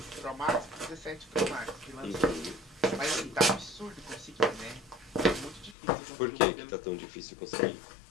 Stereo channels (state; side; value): drops out; right; at 5.8 s